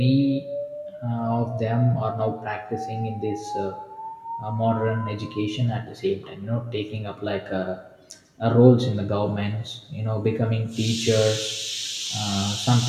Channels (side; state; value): both; identical; correlation 1.00